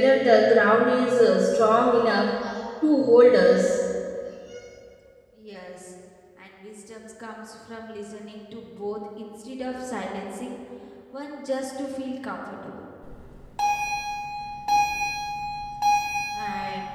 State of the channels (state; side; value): identical; both; correlation 1.00